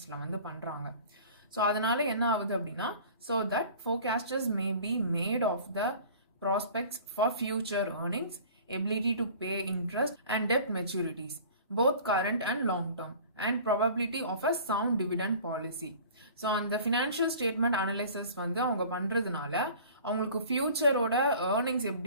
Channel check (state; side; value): inverted; both; correlation -0.45